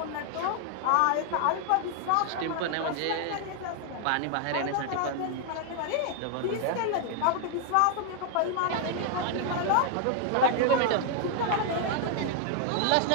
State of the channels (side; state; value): both; different; correlation 0.00